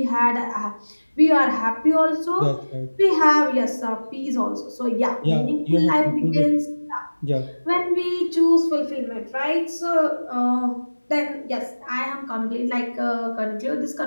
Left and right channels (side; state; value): both; inverted; correlation -1.00